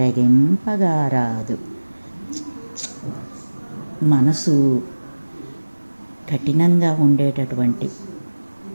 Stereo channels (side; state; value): both; inverted; correlation -1.00